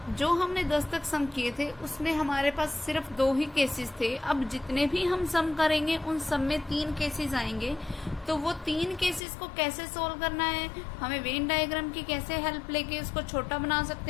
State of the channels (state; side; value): drops out; right; at 9.2 s